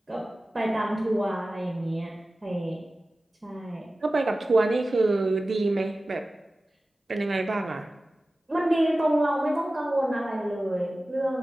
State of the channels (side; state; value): both; normal; correlation 0.96